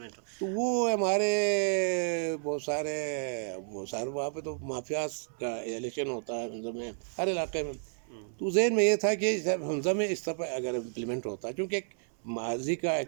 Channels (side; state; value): left; silent; 57 dB below the other